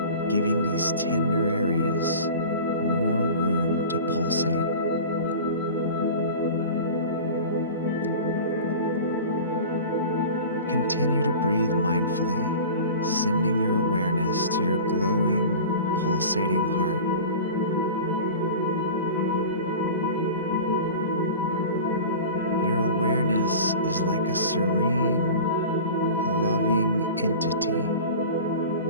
giving these tender areas more room to pulsate. Continue to breathe mindfully, sending your awareness to your glowing, pulsating heart. Your awareness is like a serene, loving entity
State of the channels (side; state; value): both; inverted; correlation -0.36